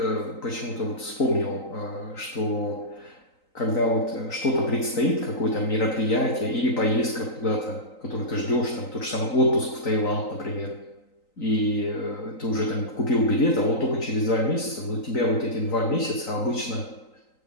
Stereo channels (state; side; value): late; right; 3.9 ms